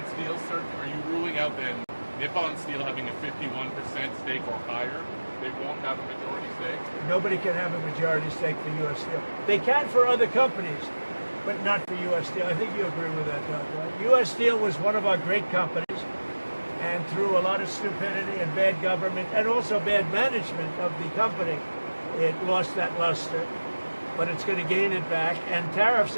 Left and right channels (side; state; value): both; inverted; correlation -1.00